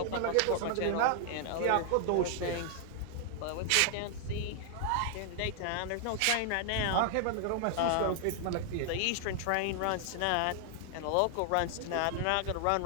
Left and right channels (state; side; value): different; both; correlation 0.00